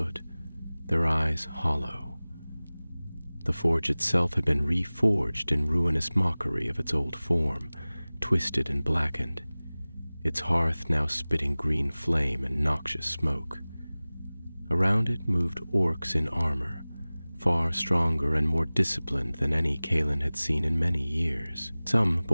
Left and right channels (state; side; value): inverted; both; correlation -0.99